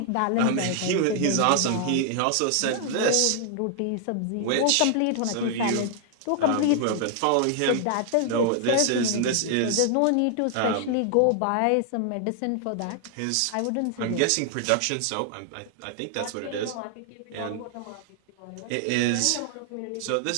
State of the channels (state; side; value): different; both; correlation 0.00